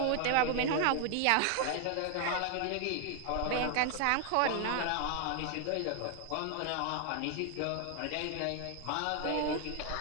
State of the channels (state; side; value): different; both; correlation 0.00